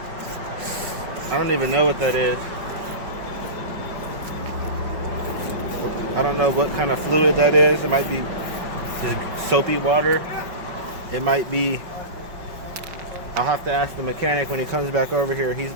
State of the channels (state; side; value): late; left; 5.4 ms